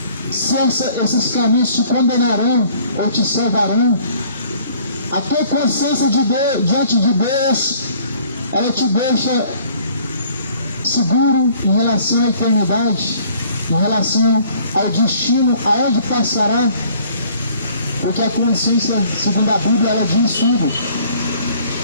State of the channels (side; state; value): both; inverted; correlation -0.56